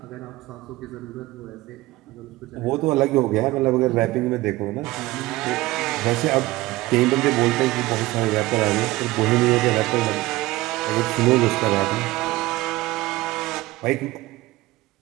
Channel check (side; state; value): left; quieter; 19.0 dB